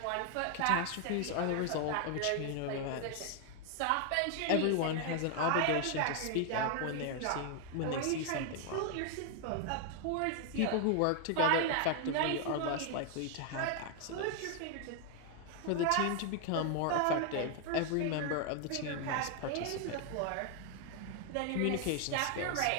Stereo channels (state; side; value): different; both; correlation 0.00